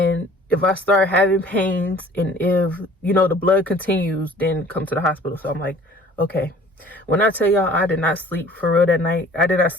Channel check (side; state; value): both; normal; correlation 0.50